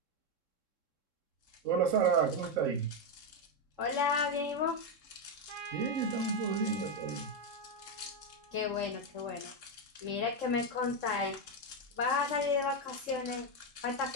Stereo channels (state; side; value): late; left; 3.7 ms